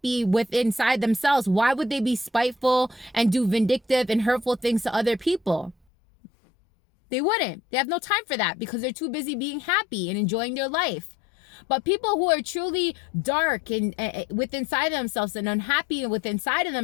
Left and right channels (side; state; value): right; drops out; at 5.8 s